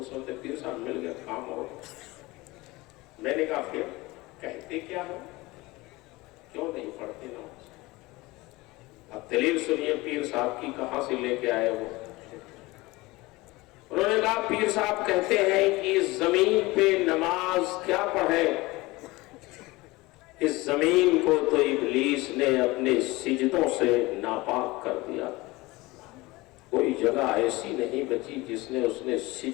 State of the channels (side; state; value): right; quieter; 21.5 dB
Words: سوچتے پیر صاحب مل گئے کام ہو گیا. میں نے کہا پھر کہتے کیا ہو، کیوں نہیں پڑھتے نماز؟ اب دلیل سنیے پیر صاحب کی کہاں سے لے کے آئے وہ. انہوں نے کہا پیر صاحب کہتے ہیں کہ اس زمین پہ نماز کیا پڑھے، اس زمین کو تو ابلیس نے اپنے سجدوں سے ناپاک کر دیا. کوئی جگہ ایسی نہیں بچی جس نے اس نے